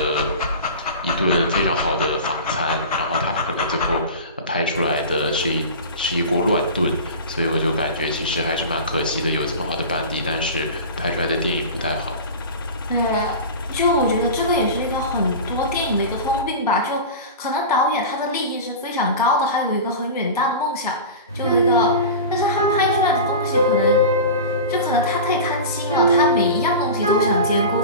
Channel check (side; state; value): both; inverted; correlation -0.30